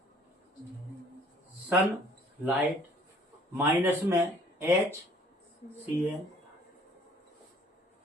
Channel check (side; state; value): both; normal; correlation 0.57